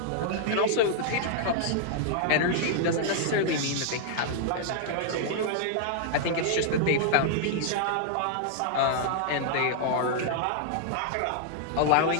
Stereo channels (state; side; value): different; both; correlation -0.01